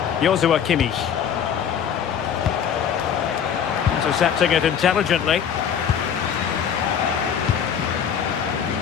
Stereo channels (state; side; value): quieter; right; 8.2 dB